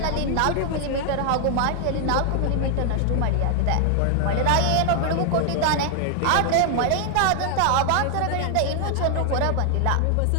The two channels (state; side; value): different; both; correlation 0.00